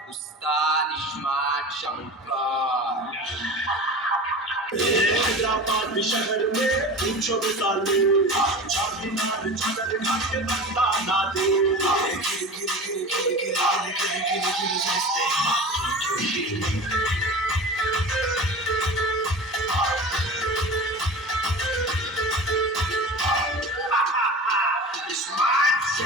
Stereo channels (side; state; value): both; normal; correlation 0.33